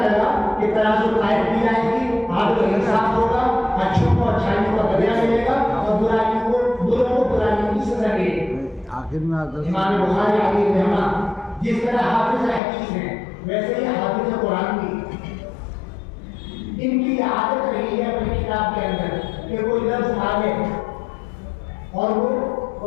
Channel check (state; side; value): drops out; right; at 12.6 s